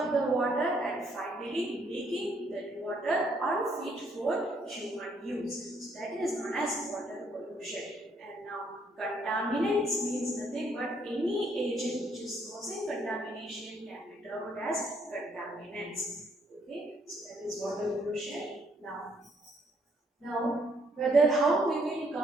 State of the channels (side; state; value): both; normal; correlation 0.69